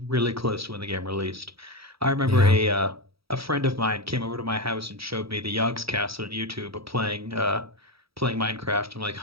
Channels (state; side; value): late; left; 0.76 ms